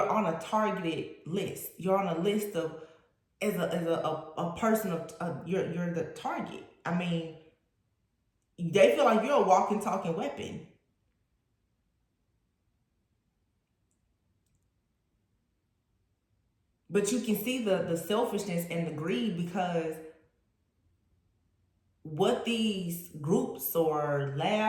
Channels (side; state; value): both; identical; correlation 1.00